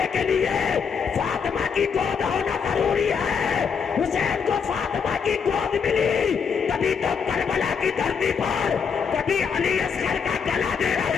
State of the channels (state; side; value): quieter; right; 6.4 dB